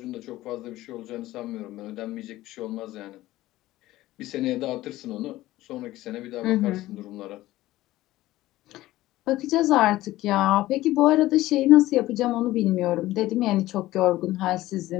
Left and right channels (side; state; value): right; quieter; 16.4 dB